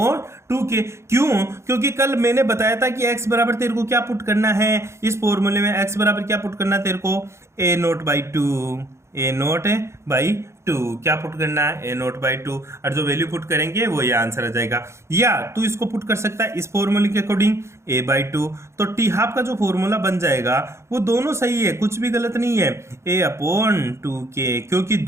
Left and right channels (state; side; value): late; left; 0.13 ms